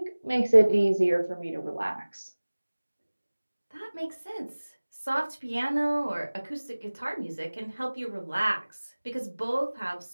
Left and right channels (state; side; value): inverted; both; correlation -1.00